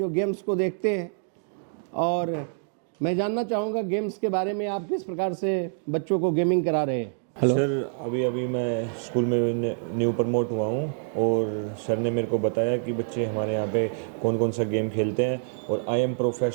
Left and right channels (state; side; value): silent; left; digital silence